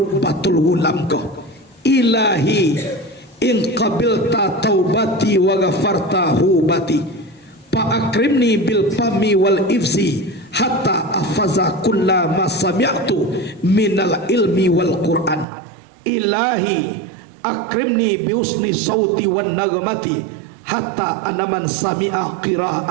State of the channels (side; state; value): left; drops out; at 15.5 s